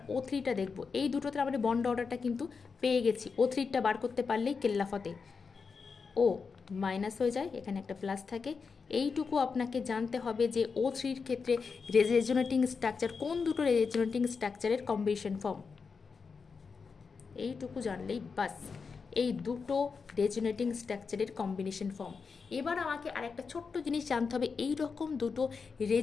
O3টা দেখব। এই দুটোতে আমরা বন্ড অর্ডারটা কিন্তু পেয়ে গেছি। O3টা বার করতে পারলেই কেল্লাফতে ও মাইনাস হয়ে যায়, এখানে একটা প্লাস থাকে। এইটুকু আপনাকে জানতে হবে যে O3-র ক্ষেত্রে রেজোনেটিং স্ট্রাকচার কোন দুটো রেজোনেটিং স্ট্রাকচারের কম্বিনেশন ফর্ম, এইটুকু জানলেই বাস, এই দুটো রেজোনেটিং স্ট্রাকচারের কম্বিনেশন ফর্ম। এবার আমাকে আরেকটা ছোট্ট জিনিস জানতে হবে, এই রকম দুটো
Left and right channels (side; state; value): right; quieter; 5.2 dB